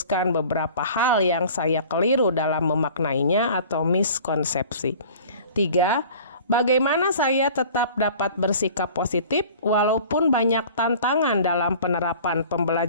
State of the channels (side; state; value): both; inverted; correlation -0.45